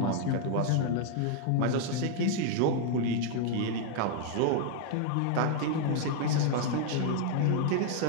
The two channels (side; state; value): both; different; correlation 0.00